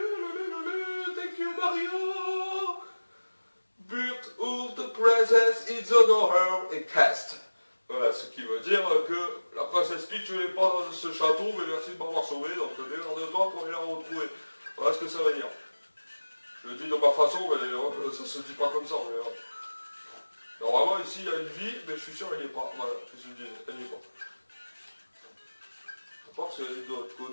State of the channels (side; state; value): both; inverted; correlation -1.00